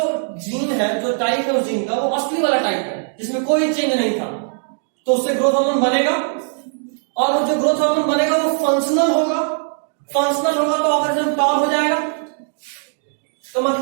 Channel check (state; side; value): silent; left; digital silence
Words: जीन है, जो टाइप है उस जीन का, वो असली वाला टाइप है जिसमें कोई चेंज नहीं था, तो उससे ग्रोथ हार्मोन बनेगा, और वो जो ग्रोथ हार्मोन बनेगा वो फंक्शनल होगा, फंक्शनल होगा तो ऑर्गेनिज्म टॉल हो जाएगा। तो